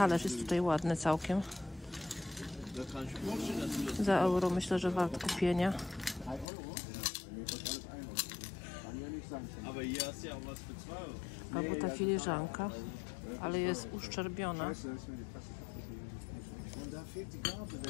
jest tutaj ładny całkiem. Za euro myślę, że wart kupienia. Albo ta filiżanka, ale jest uszczerbiona.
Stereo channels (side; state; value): right; drops out; at 6.5 s